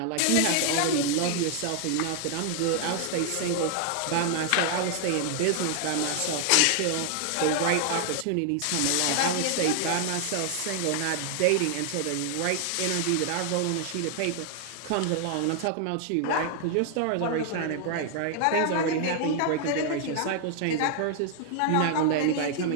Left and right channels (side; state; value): both; different; correlation 0.00